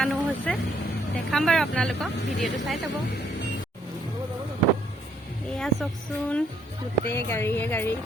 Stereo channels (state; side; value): normal; both; correlation 0.69